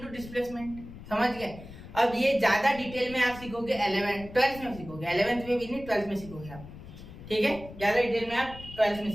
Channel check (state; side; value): noise; left; rumble, 15 dB below the sound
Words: displacement, समझ गए। अब ये ज्यादा डिटेल में आप सीखोगे 12th में सीखोगे, 11th में भी नहीं 12th में सीखोगे आप, ठीक है। ज्यादा डिटेल में आप 12th में